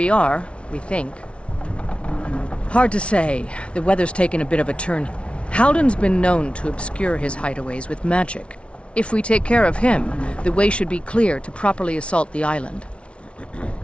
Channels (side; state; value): right; late; 0.060 ms